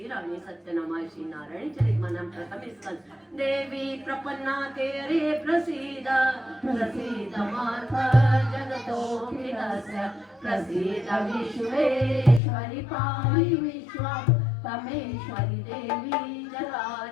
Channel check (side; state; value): right; drops out; at 12.4 s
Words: सत्यनामाय श्री नारायणी चरितमनं प्रथमे स्कंद देवी प्रपन्ना तेरे प्रसीद प्रसीद मार्ग जगतोऽखिलस्य प्रसीद विश्वेश्वरि पाहि विश्वं तमेश्वरी देवी